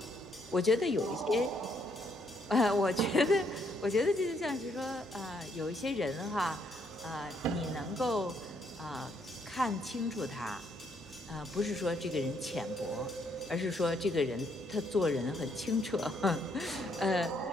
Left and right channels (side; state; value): both; normal; correlation 0.72